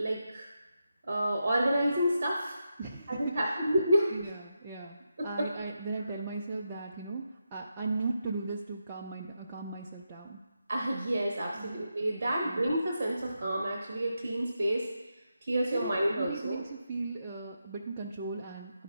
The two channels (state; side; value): inverted; both; correlation -0.86